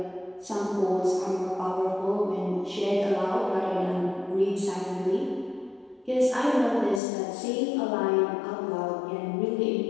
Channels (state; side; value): drops out; right; at 7.0 s